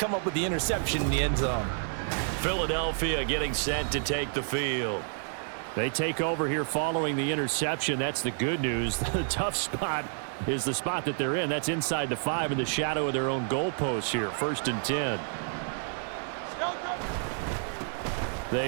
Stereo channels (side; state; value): left; silent; digital silence